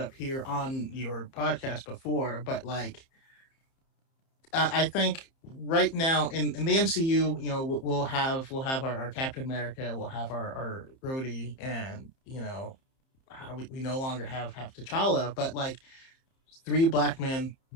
here on your podcast before, but like I think right now in the MCU, you know, we'll have our Captain America, we'll have our Rhodey, and you know, we no longer have T'Challa, but like three black men,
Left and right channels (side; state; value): right; late; 30 ms